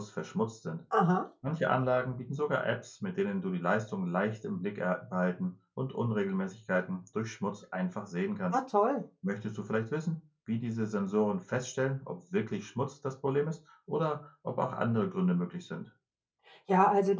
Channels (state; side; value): identical; both; correlation 1.00